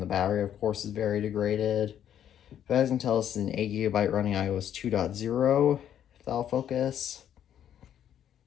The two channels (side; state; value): right; quieter; 10.1 dB